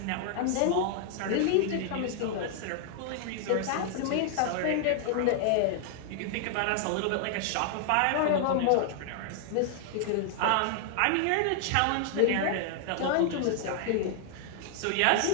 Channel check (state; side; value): different; both; correlation 0.00